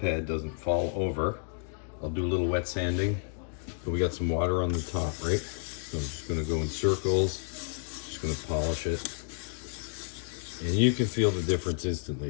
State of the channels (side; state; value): right; silent; 57 dB below the other